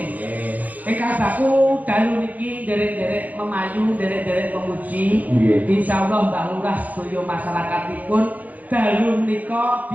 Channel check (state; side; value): late; left; 0.078 ms